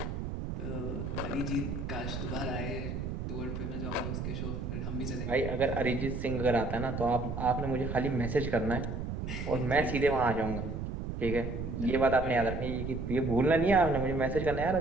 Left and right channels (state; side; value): noise; right; rumble, 4 dB below the sound